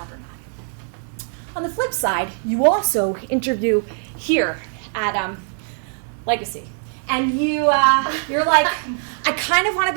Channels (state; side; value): silent; left; 58 dB below the other